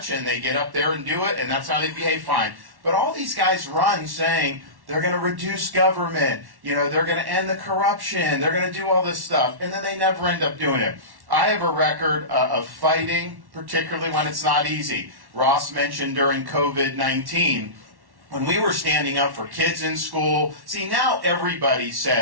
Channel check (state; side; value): late; left; 1.1 ms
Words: and they get up there and do it, and that's how they behave, fine. But all these guys run saying they're going to reduce government, they're going to end the corruption, they're going to do all this stuff, and then they never end up doing it. I have a record of fighting, particularly when it's not easy. Ross mentioned during COVID-19, when we were standing up for kids in school. See, now everybody